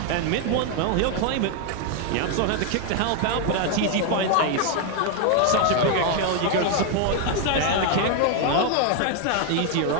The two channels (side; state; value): both; different; correlation 0.01